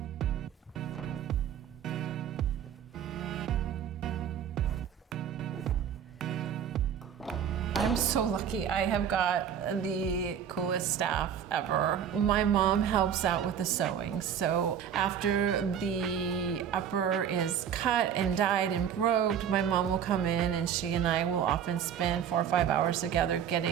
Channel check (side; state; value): left; quieter; 8.6 dB